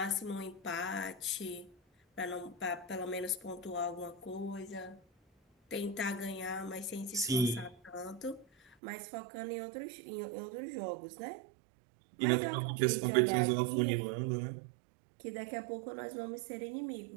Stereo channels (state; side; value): drops out; left; at 8.8 s